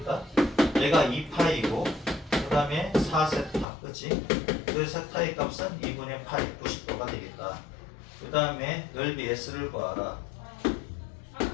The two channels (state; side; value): drops out; right; at 3.7 s